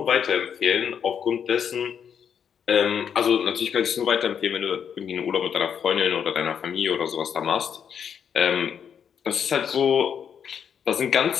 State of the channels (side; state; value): right; quieter; 7.8 dB